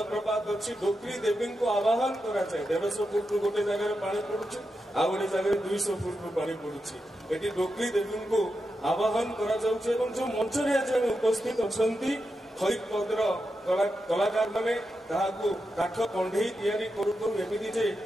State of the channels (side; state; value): both; normal; correlation 0.88